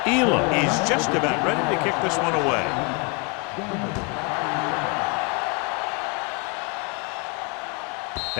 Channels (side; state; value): right; quieter; 30.6 dB